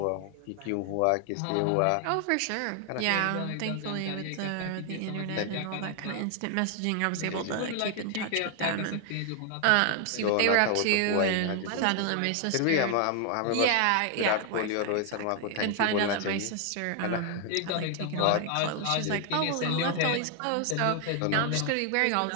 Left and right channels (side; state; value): both; different; correlation 0.00